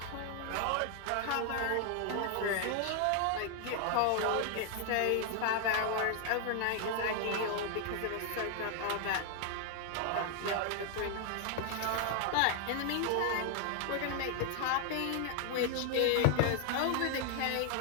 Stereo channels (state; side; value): different; both; correlation 0.00